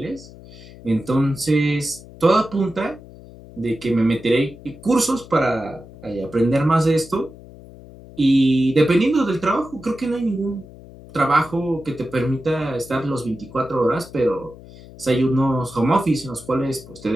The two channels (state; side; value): noise; left; hum, 19 dB below the sound